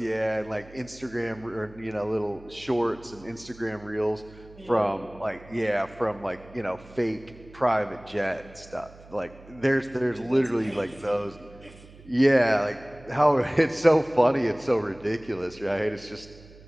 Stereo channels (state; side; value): noise; right; hum, 21 dB below the sound